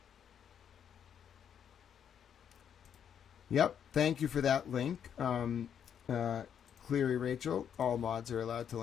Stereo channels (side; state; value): right; quieter; 8.5 dB